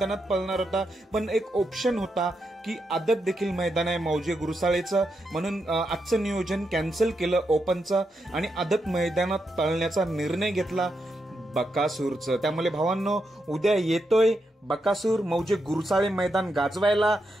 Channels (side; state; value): both; normal; correlation 0.84